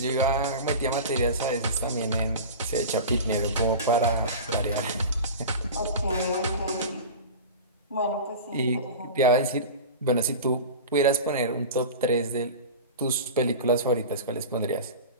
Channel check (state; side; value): inverted; both; correlation -0.31